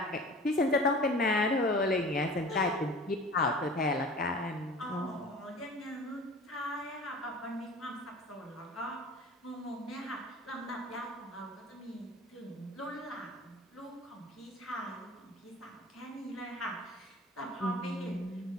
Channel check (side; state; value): both; normal; correlation 0.41